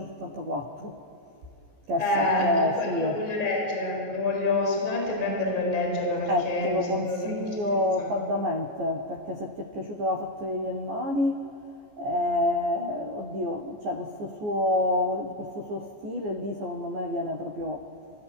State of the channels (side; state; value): left; late; 14 ms